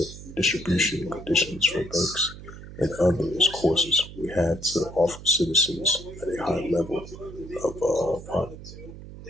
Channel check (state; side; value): noise; right; hum, 14 dB below the sound